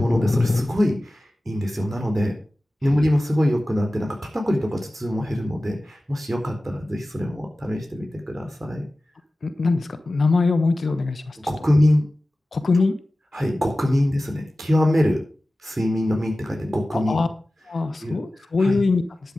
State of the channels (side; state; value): both; normal; correlation 0.96